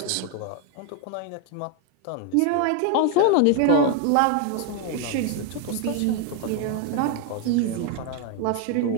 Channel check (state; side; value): different; both; correlation 0.01